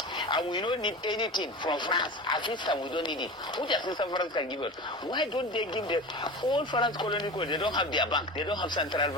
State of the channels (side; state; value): both; normal; correlation 0.31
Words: And we don't need anything from France. Assistance, we don't need it. Which assistance France can give us? Why don't they give the all France colony? They don't have their bank. They don't have central